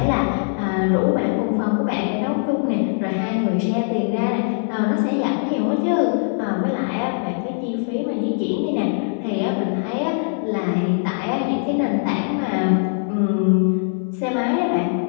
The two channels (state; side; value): silent; right; digital silence